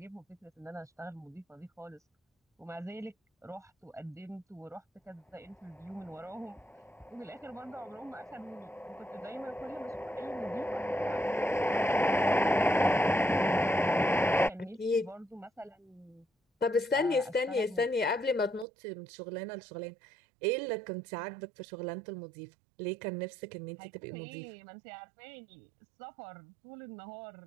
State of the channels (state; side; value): drops out; left; at 18.7 s